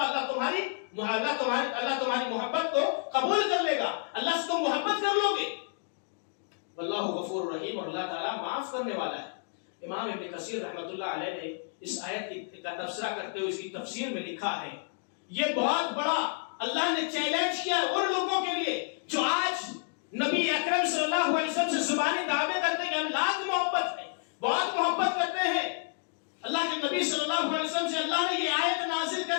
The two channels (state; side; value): silent; right; digital silence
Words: تمہاری محبت کو قبول کر لے گا، اللہ سے تم محبت کر لو گے. واللہ غفور رحیم، اور اللہ تعالیٰ معاف کرنے والا ہے. امام ابن کثیر رحمۃ اللہ علیہ نے اس آیت کا تبصرہ کرتے ہوئے اس کی تفسیر میں لکھا ہے یہ بہت بڑا اللہ نے چیلنج کیا ان لوگوں کے لیے جو آج نبی اکرم صلی اللہ علیہ وسلم سے زبانی دعوے کرتے ہیں کہ ہم لاکھ محبت ہے، بہت محبت کرتے ہیں. اللہ کے نبی صلی اللہ علیہ وسلم سے اللہ نے یہ آیت نازل